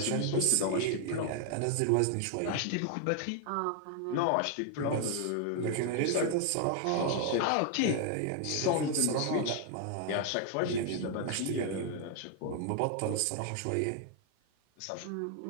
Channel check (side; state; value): both; different; correlation 0.00